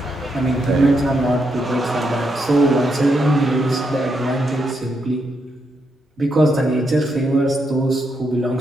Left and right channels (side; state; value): both; normal; correlation 0.80